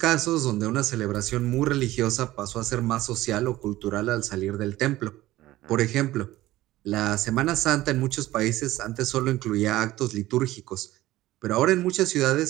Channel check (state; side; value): quieter; left; 16.3 dB